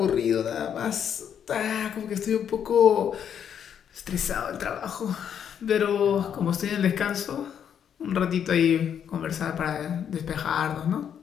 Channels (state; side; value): quieter; right; 8.6 dB